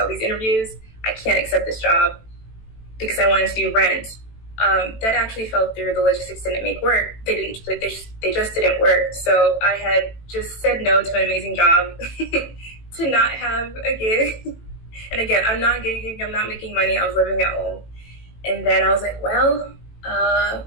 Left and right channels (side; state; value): right; late; 18 ms